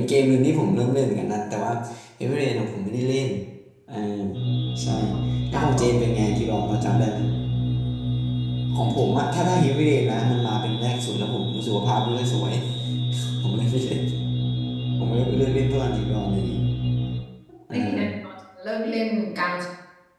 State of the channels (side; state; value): both; identical; correlation 1.00